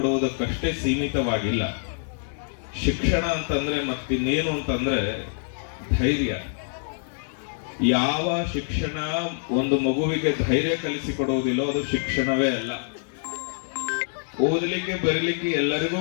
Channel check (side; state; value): right; silent; digital silence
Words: ಸೀಮಿತವಾಗಿಲ್ಲ. ಶಿಕ್ಷಣ ಅಂತಂದ್ರೆ ಮತ್ತಿನ್ನೇನು ಅಂತಂದ್ರೆ ಧೈರ್ಯ. ಯಾವ ಶಿಕ್ಷಣ ಒಂದು ಮಗುವಿಗೆ ಧೈರ್ಯ ಕಲಿಸಿಕೊಡುವುದಿಲ್ಲೋ ಅದು ಶಿಕ್ಷಣವೇ ಅಲ್ಲ. ಓದಲಿಕ್ಕೆ ಬರೀಲಿಕ್ಕೆ ಎಲ್ಲರಿಗೂ